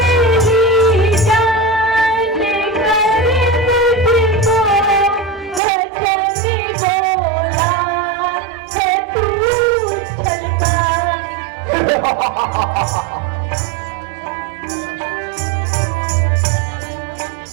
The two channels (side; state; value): left; drops out; at 5.6 s